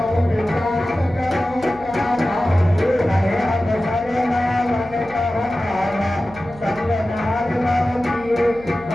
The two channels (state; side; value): noise; left; hum, 20 dB below the sound